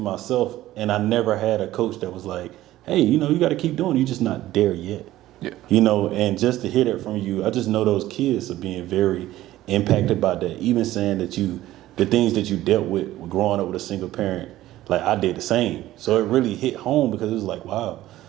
and I never had a coach that was like, hey, you got to keep doing it. You're just not there yet. Yeah. And just to hear that from you, I just know those kids are being very impacted by that. Even saying that the things that you dealt with growing up with a single parent, like I did the same. So it really hit home because it was like, wow.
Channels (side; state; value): left; quieter; 15.0 dB